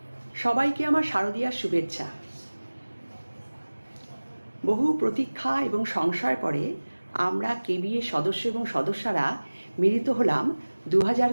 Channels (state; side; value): inverted; both; correlation -1.00